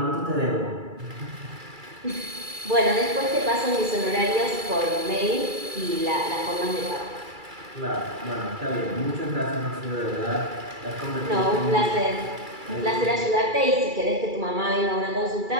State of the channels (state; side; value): late; left; 2.3 ms